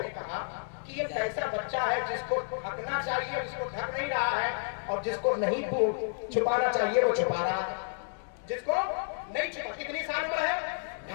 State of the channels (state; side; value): silent; right; digital silence